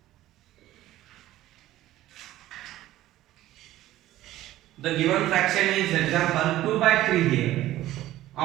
The given fraction is example 2 by 3 here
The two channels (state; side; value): quieter; left; 14.8 dB